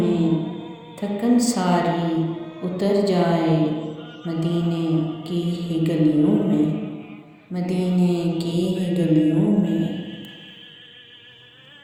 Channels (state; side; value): identical; both; correlation 1.00